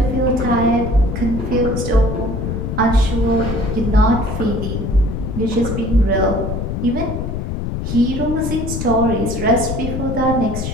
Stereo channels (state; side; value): noise; left; rumble, 3 dB below the sound